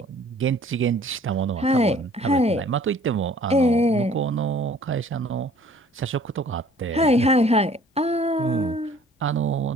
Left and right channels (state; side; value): normal; both; correlation 0.54